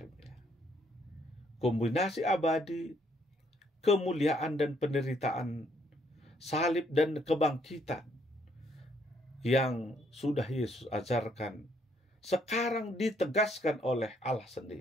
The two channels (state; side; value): normal; both; correlation 0.69